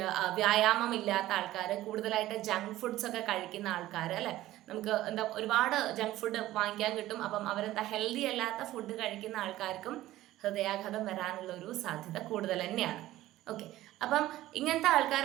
വ്യായാമം ഇല്ലാത്ത ആൾക്കാർ, കൂടുതലായിട്ട് ജങ്ക് ഫുഡ്സ് ഒക്കെ കഴിക്കുന്ന ആൾക്കാർ അല്ലെ, നമുക്ക് ഒരുപാട് ജങ്ക് ഫുഡ് വാങ്ങിക്കാൻ കിട്ടും. അപ്പം ഹെൽത്തി അല്ലാത്ത ഫുഡ് കഴിക്കുന്ന ആൾക്കാർക്കും ഹൃദയാഘാതം വരാനുള്ള ഒരു സാധ്യത കൂടുതൽ തന്നെയാണ്. ഓക്കെ. അപ്പം ഇങ്ങനത്തെ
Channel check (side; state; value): left; quieter; 15.4 dB